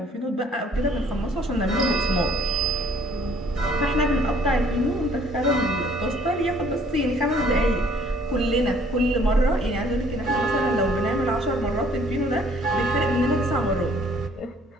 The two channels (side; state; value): both; normal; correlation 0.59